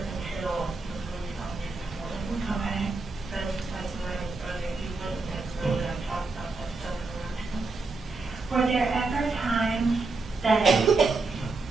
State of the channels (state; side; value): quieter; left; 3.7 dB